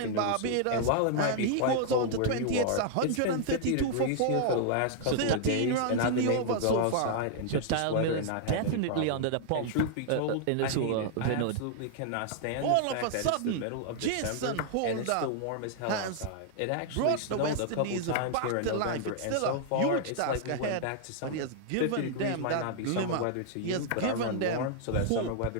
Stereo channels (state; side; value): different; both; correlation -0.01